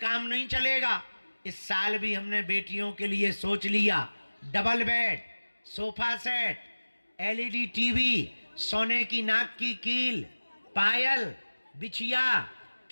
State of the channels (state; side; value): inverted; both; correlation -1.00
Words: नहीं चलेगा। इस साल भी हमने बेटियों के लिए सोच लिया, double bed, sofa set, LED TV, सोने की नाक की कील, पायल, बिछिया,